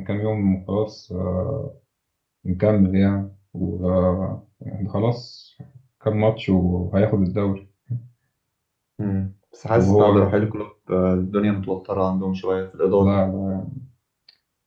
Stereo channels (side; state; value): both; identical; correlation 1.00